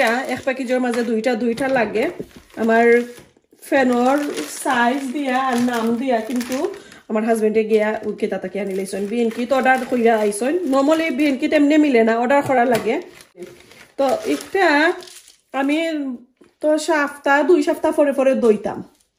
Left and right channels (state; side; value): identical; both; correlation 1.00